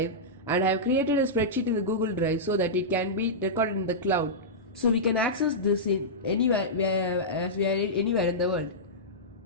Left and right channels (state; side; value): normal; both; correlation -0.13